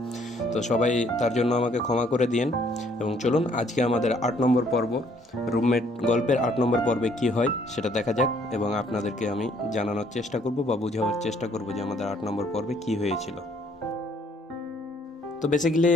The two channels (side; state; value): both; normal; correlation 0.64